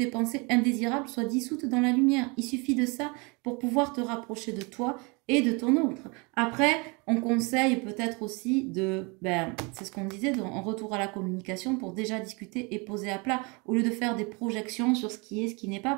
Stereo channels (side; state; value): left; quieter; 29.7 dB